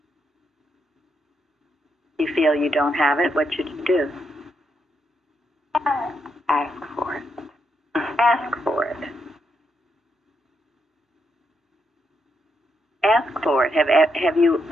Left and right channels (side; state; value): both; normal; correlation 0.80